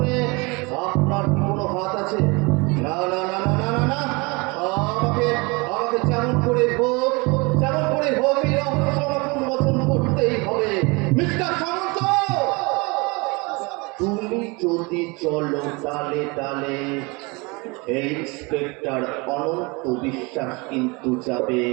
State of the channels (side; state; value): left; quieter; 27.4 dB